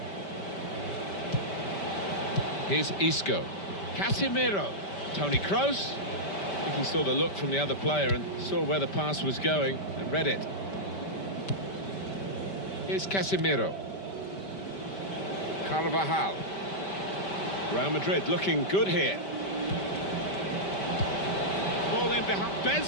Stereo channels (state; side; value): late; right; 5.1 ms